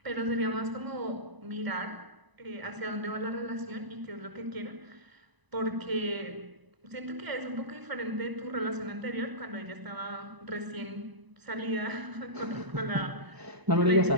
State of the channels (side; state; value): left; late; 1.0 ms